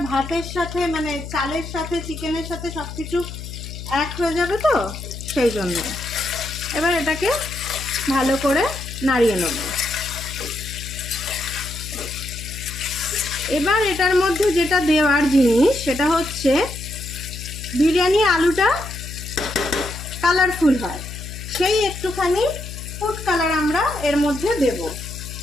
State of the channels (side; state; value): left; noise; hum, 10 dB below the sound